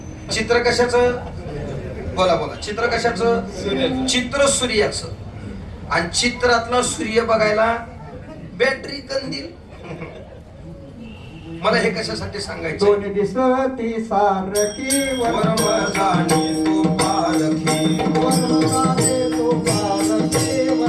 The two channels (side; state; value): both; identical; correlation 1.00